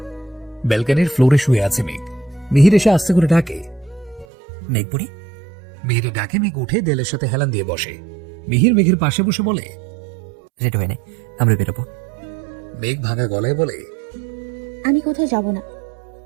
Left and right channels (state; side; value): drops out; left; at 4.2 s